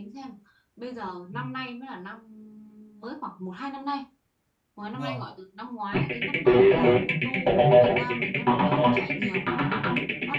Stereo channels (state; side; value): identical; both; correlation 1.00